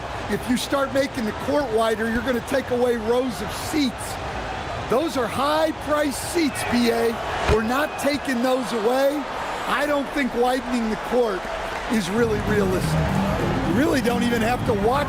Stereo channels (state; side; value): identical; both; correlation 1.00